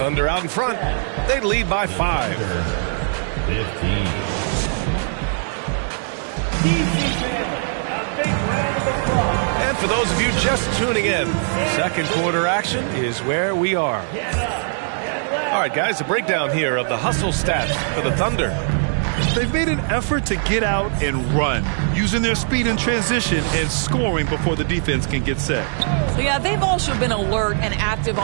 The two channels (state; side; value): silent; left; digital silence